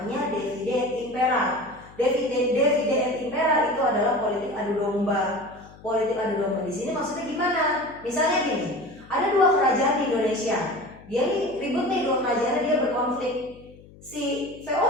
divide et impera. Divide et impera itu adalah politik adu domba. Politik adu domba di sini maksudnya gimana? Misalnya gini, ada dua kerajaan di Indonesia. Dia nih ribut nih, dua kerajaan dia berkonflik. Si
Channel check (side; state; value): left; noise; hum, 22 dB below the sound